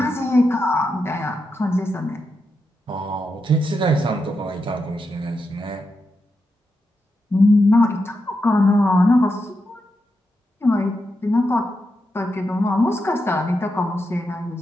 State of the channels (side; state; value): both; normal; correlation 0.86